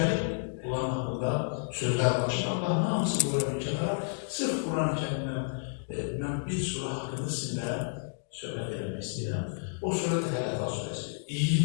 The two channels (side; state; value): right; silent; digital silence